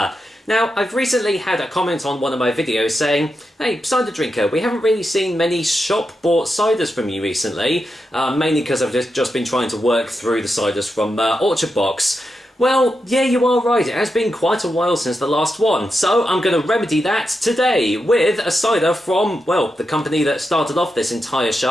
Now, I've recently had a comment on one of my videos saying, hey, Cider Drinker, we haven't really seen many shop-bought ciders from you recently, mainly because I've just been trying to work through the ciders from Orchard Box. Well, yeah, you are right, it has been quite a while since the last one, so I'm going to remedy that today with a cider from, well, the company that started off this entire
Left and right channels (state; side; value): normal; both; correlation 0.87